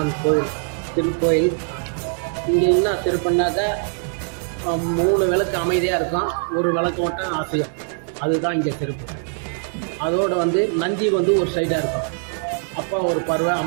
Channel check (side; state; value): left; silent; 56 dB below the other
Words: கோயில் திருக்கோயில். இங்கே என்ன சிறப்புனாக்க 3 விளக்கு அமைதியாக இருக்கும், ஒரு விளக்கு மட்டும் அசையும். அதுதான் இங்கே சிறப்பு. அதோடு நந்தி ஒரு சைடாக இருக்கும். அப்பா ஒரு பார்வை,